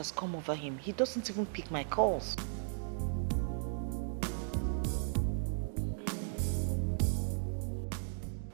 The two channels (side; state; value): left; silent; digital silence